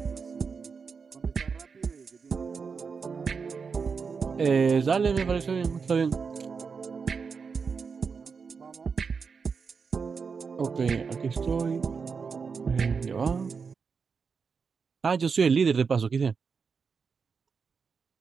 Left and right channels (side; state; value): left; quieter; 5.5 dB